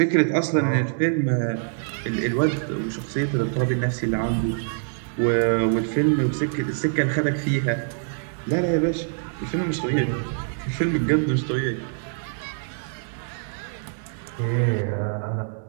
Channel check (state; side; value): silent; left; digital silence